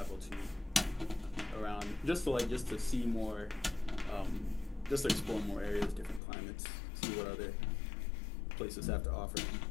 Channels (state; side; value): drops out; right; at 6.2 s